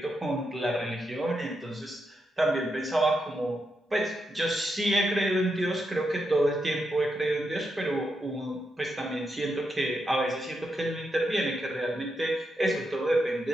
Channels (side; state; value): both; normal; correlation 0.84